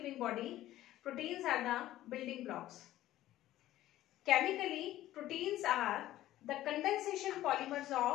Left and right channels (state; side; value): quieter; right; 14.4 dB